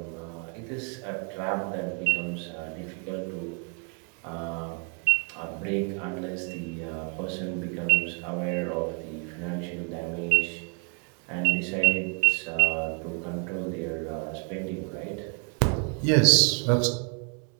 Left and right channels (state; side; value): quieter; left; 38.4 dB